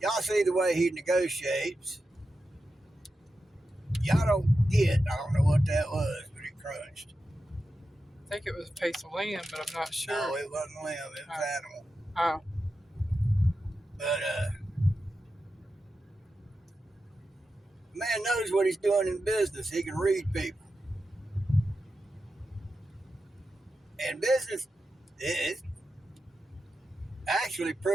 Y'all see the way he negotiates. Y'all don't get, I don't know what that was, but it crunched. I think it was a piece of land, but I'm not sure. No, it wasn't limb, it was animal. Oh. But, man knows what he's doing in business. He can read people. And business is actually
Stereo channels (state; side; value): normal; both; correlation 0.90